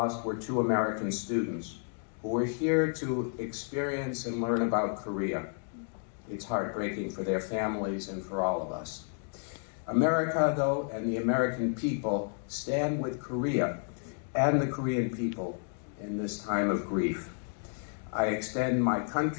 were 2 American students who were here to experience and learn about Korea. It's heartbreaking for their families and for all of us. America, though, and the American people stand with Korea and the Korean people in this time of grief. I extend my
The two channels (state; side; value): silent; right; 57 dB below the other